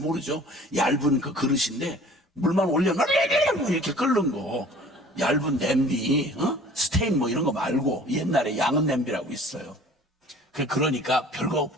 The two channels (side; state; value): both; normal; correlation 0.49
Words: 얇은 그 그릇인데 물만 올려놓으면 이렇게 끓는 거. 얇은 냄비, 스테인 뭐 이런 거 말고 옛날에 양은 냄비라고 있어요. 그러니까 별거